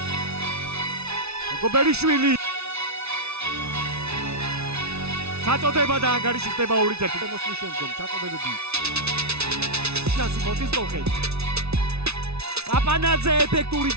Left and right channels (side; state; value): left; late; 0.80 ms